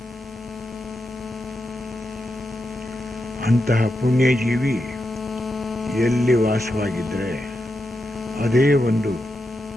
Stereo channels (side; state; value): both; normal; correlation 0.87